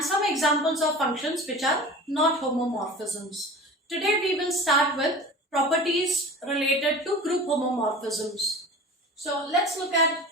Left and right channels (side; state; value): both; normal; correlation 0.37